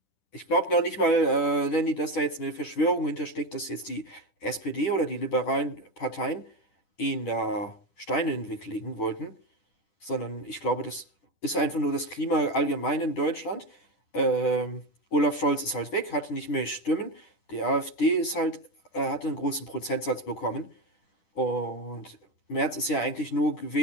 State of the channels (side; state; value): right; late; 10 ms